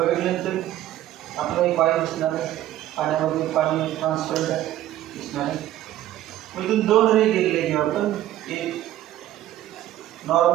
आपलं एक पाणी दिसणार आहे पाण्यामध्ये पाणी ट्रान्सपरंट आहे दिसणार आहे मग इथून दोन रे गेलेले घेऊ आपण एक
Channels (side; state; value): left; quieter; 13.6 dB